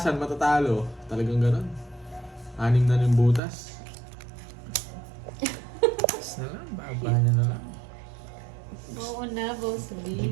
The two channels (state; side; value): drops out; left; at 3.4 s